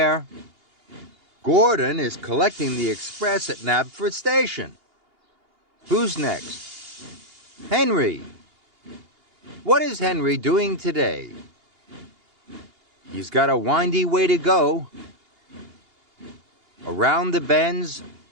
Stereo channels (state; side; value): late; left; 2.8 ms